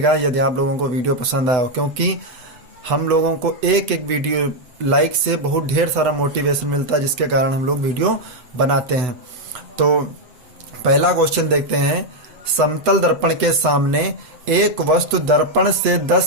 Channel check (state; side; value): late; left; 8.0 ms